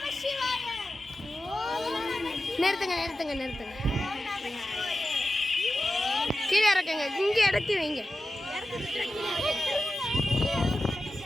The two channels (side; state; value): both; normal; correlation 0.93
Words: சிவாய. நிறுத்துங்க நிறுத்துங்க நிறுத்துங்க. கீழே இறக்குங்க. இங்கே இறக்கி வைங்க.